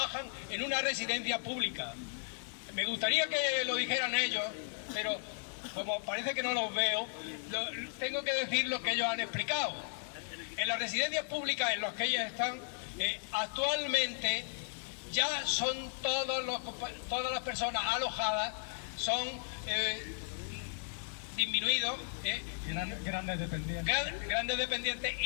en una residencia pública. Me gustaría que lo dijeran ellos, pero como parece que no los veo, tengo que decir lo que ellos han explicado. En las residencias públicas en las que ellos están, actualmente ya son todas las personas alojadas, son disminuidos, Grandes dependientes. grandes dependientes,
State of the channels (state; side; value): silent; right; digital silence